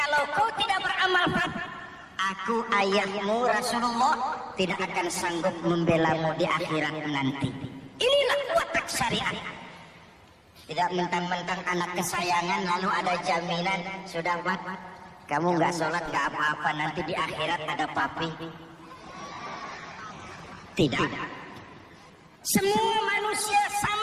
kau tidak beramal, aku ayahmu Rasulullah tidak akan sanggup membelamu di akhirat nanti. Inilah watak syariat. Tidak mentang-mentang anak kesayangan lalu ada jaminan, sudah Pak, kamu nggak sholat nggak apa-apa, nanti di akhirat ada papi. Tidak. Semua manusia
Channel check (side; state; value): both; identical; correlation 1.00